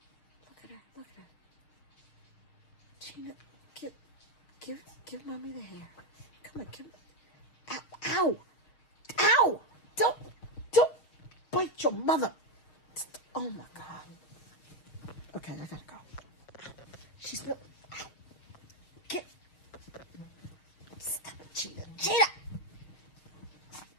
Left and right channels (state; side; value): late; right; 6.4 ms